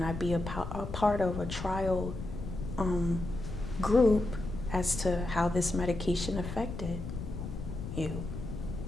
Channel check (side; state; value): left; noise; rumble, 7 dB below the sound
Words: I be a part of a trial group as to how this medication affected you?